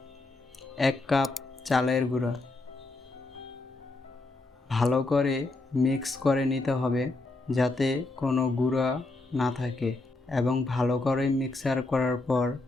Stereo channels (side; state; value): right; quieter; 3.1 dB